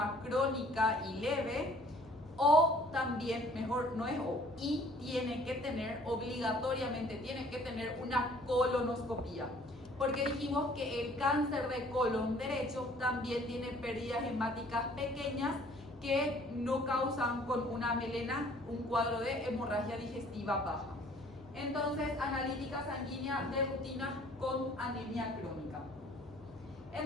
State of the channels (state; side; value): normal; both; correlation 0.55